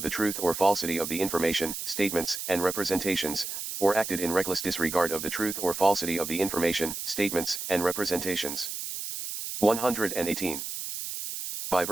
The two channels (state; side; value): noise; right; hiss, 6 dB below the sound